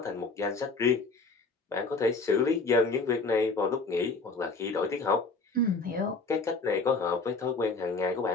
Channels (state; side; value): quieter; right; 3.8 dB